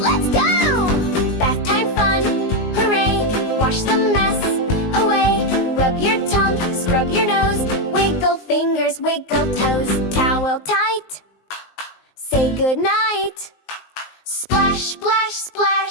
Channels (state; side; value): late; right; 19 ms